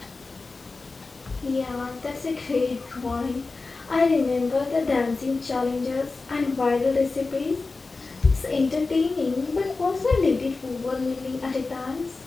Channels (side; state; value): right; quieter; 3.8 dB